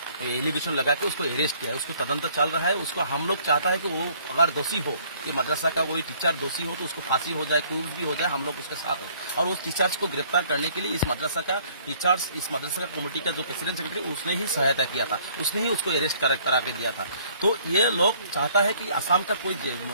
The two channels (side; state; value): both; inverted; correlation -0.59